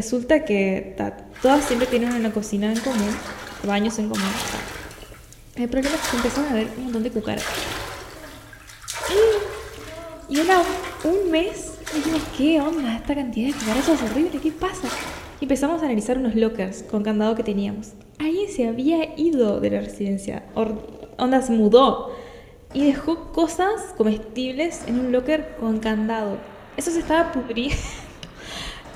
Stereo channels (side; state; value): both; identical; correlation 1.00